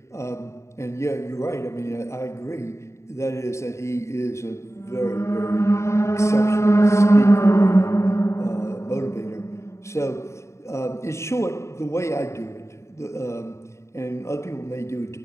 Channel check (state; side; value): late; right; 0.14 ms